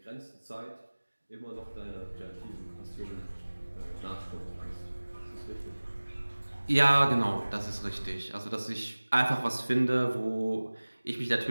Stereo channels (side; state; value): both; inverted; correlation -1.00